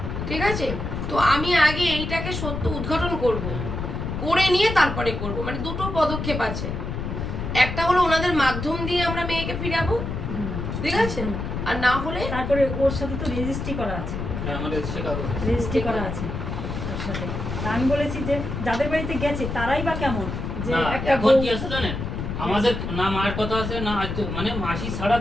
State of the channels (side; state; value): left; noise; rumble, 4 dB below the sound